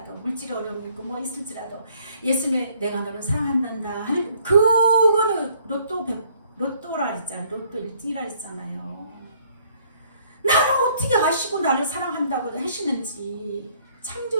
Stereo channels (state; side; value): inverted; both; correlation -0.63